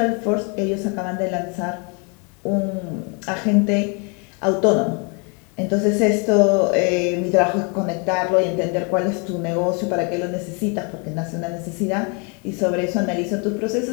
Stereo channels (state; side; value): quieter; right; 35.0 dB